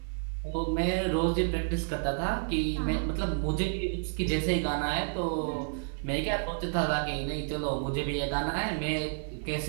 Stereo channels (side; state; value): left; silent; digital silence